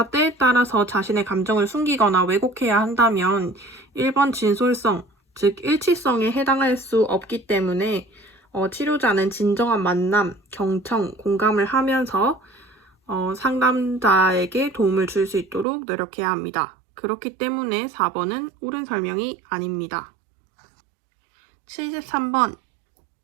때에 따라서 자신의 감정을 숨기거나 왜곡해야 한다면 1번 진솔성, 즉 일치성에 해당할 수 없기 때문에 치료자는 진정한 만남, 경청, 공감을 하면서 상담자에게 도움을 줄 수 있도록 노력해야 합니다. 그렇기 때문에 4번은 옳은 설명이 아닙니다. 73번,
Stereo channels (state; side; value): drops out; left; at 15.7 s